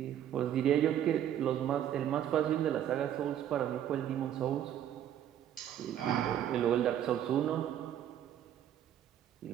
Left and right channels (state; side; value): quieter; left; 10.6 dB